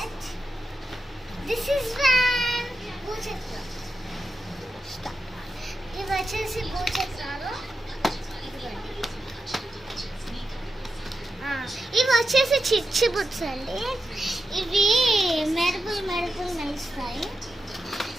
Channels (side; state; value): both; normal; correlation 0.89